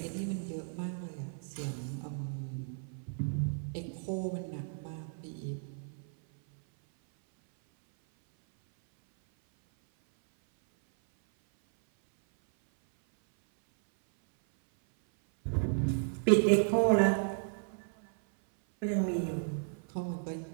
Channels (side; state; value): left; silent; 55 dB below the other